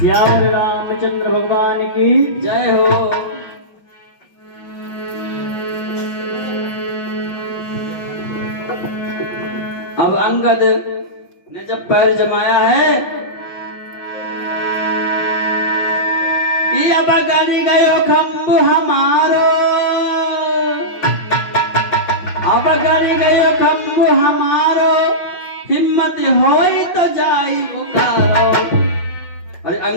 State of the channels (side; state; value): right; late; 5.6 ms